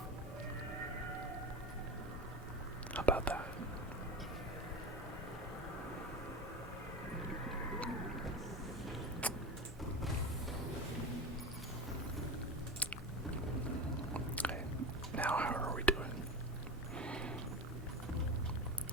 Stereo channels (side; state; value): both; normal; correlation 0.24